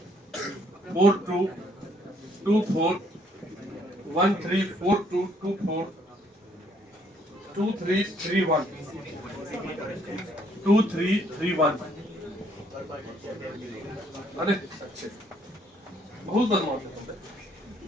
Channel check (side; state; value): both; normal; correlation 0.66